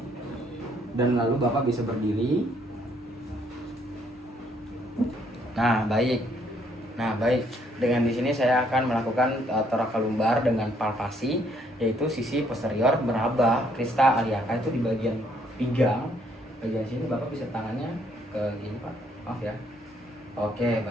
Dan lalu Bapak bisa berdiri. Nah, baik. Dengan di sini saya akan melakukan thoracal lumbar dengan palpasi, yaitu sisi posterior meraba crista iliaca itu di bagian pinggang. Bagian sini Bapak bisa tangannya ke gini Pak. Maaf ya. Oke,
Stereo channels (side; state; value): both; normal; correlation 0.68